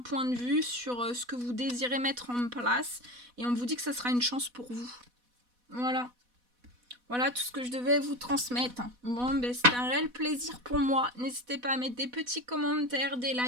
de vue sur ce que vous désirez mettre en place. Et on vous dit que ça sera une chance pour vous. Voilà. Voilà tout ce que je devais vous transmettre. Bon, ben c'était un réel plaisir pour moi. N'hésitez pas à mettre des petits commentaires, des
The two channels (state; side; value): late; left; 4.1 ms